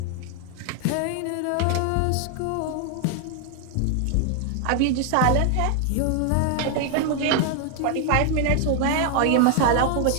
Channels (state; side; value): different; both; correlation 0.00